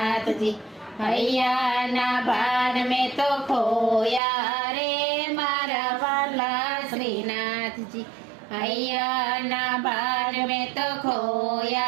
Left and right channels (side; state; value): left; drops out; at 4.2 s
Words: હૈયાના ભાન મેં તો ખોયા રે મારા વાલા શ્રીનાથજી. હૈયાના ભાન મેં તો